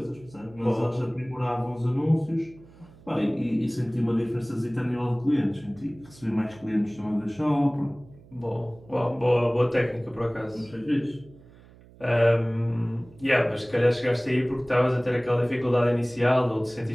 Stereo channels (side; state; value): right; noise; hum, 24 dB below the sound